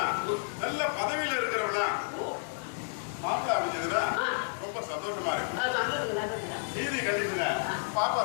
நல்ல பதவியில இருக்கிறவனா மாப்பிள்ள அமைஞ்சதுன்னா ரொம்ப சந்தோஷமா இருக்கு. நீதி கண்டிஷன பாப்பா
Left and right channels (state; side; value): silent; right; 57 dB below the other